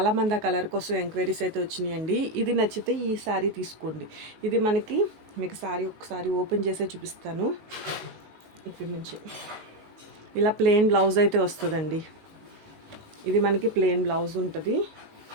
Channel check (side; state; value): left; late; 19 ms